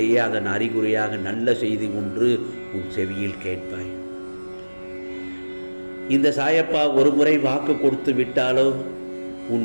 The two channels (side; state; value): both; inverted; correlation -1.00